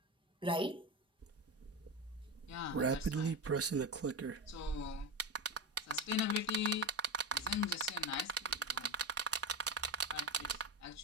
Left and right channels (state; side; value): normal; both; correlation 0.20